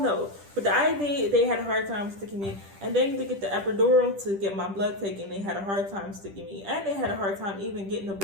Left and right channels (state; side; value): late; left; 10 ms